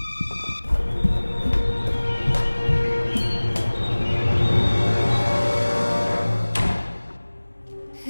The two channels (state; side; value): inverted; both; correlation -1.00